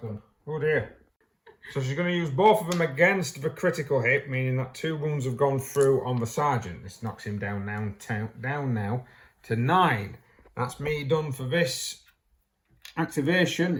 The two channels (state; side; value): identical; both; correlation 1.00